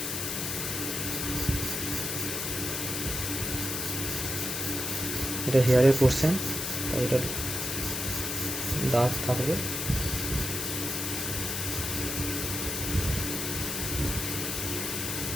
এটা হেয়ারের পোর্শন, তাই এটা ডার্ক থাকবে।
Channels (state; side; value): noise; left; hiss, 2 dB below the sound